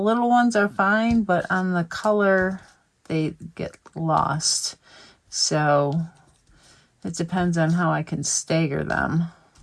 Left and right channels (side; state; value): both; identical; correlation 1.00